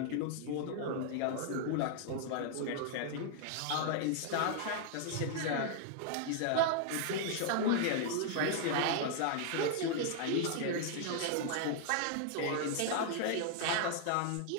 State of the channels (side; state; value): both; different; correlation 0.00